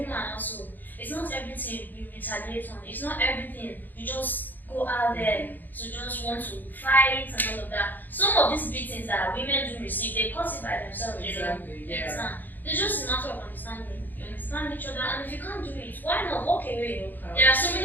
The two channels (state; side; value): late; right; 0.087 ms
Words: also, it's not everything you retaliate on. It's not everything you just go out there to just want to fight and all of that. Some of these beatings that women do receive, they cause it by themselves. Exactly, You understand? It's just a matter of understanding. You understand each other, and if you can't do it, why not walk away? wait. There are so